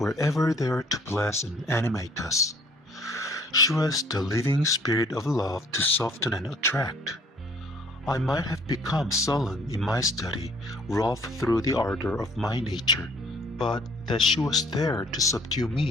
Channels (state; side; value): normal; both; correlation 0.57